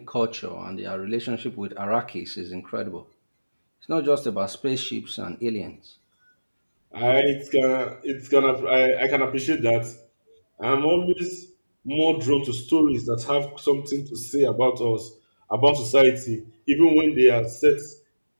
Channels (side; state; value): both; inverted; correlation -1.00